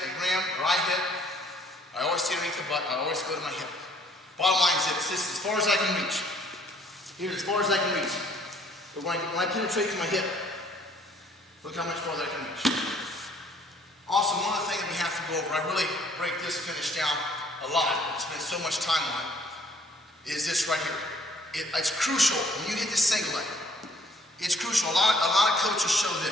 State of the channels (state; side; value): normal; both; correlation 0.61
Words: ram or I hit, I always stay underneath the butt, I always go to my hip. Bottom line is this is as far as I can reach. Here's as far as I can reach. But when I penetrate to my hip, look how much farther I can reach. Also, one other thing that we have to go over, I really break this finish down a lot, spend so much time on it, is this right here. It's crucial when you hit this single leg. It's crucial. A lot of coaches show